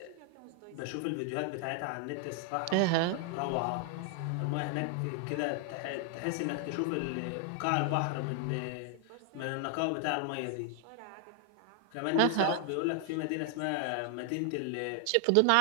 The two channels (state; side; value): different; both; correlation 0.00